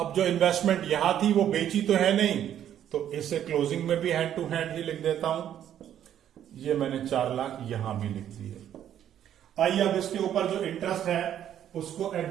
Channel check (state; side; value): quieter; left; 10.4 dB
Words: जो इन्वेस्टमेंट यहां थी वो बेची तो है नहीं, तो इसे क्लोजिंग में भी हैंड टू हैंड ही लिख देता हूं। ये मैंने 4 लाख यहां भी लिख दी है। आइए अब इसके ऊपर जो इंटरेस्ट है उसको